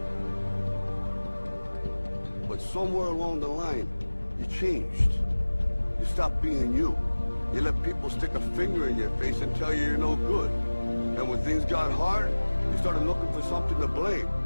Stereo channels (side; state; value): both; inverted; correlation -1.00